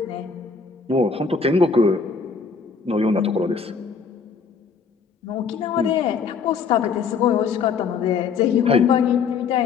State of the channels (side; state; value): right; quieter; 5.6 dB